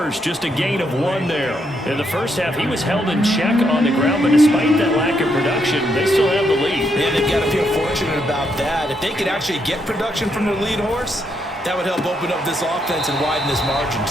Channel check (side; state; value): both; normal; correlation 0.77